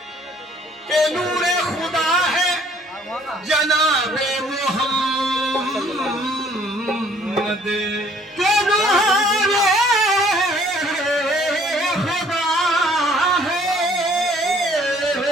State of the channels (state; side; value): normal; both; correlation 0.59